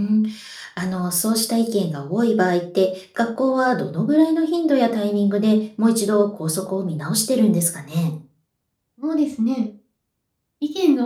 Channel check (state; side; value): identical; both; correlation 1.00